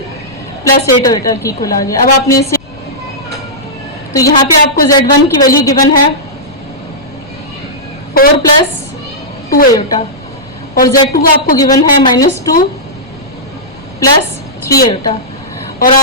plus 8 iota की इक्वल आ गया। अब आपने इसे, तो यहाँ पे आपको z1 की वैल्यू गिवन है 4 प्लस 2 आयोटा और z2 आपको गिवन है -2 प्लस 3 आयोटा। और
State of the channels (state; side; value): noise; left; rumble, 24 dB below the sound